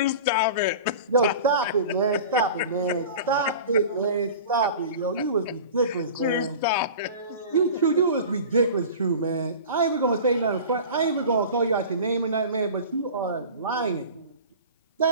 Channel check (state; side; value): inverted; both; correlation -0.37